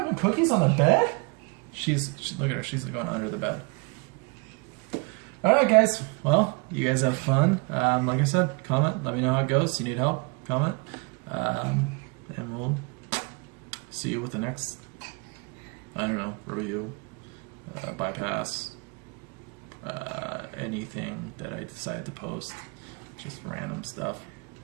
cookies on the bed? Look at her. She's going under the bed. All right, guys. Well, you guys have fun. Like I said, comment. Let me know how it goes. You need help? Comment. And we'll see you with the next, I don't know, review, bypass, anything that I decide to post. Just random stuff,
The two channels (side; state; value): left; quieter; 31.1 dB